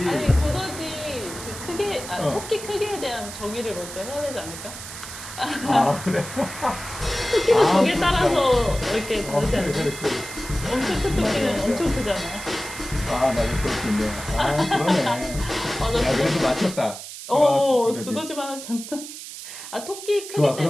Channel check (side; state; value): right; noise; hiss, 11 dB below the sound